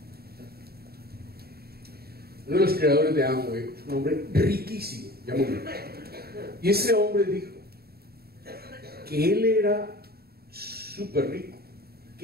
Uno de los creadores de Amway es un hombre riquísimo, ya murió. Y ese hombre dijo que él era súper rico,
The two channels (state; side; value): late; left; 0.45 ms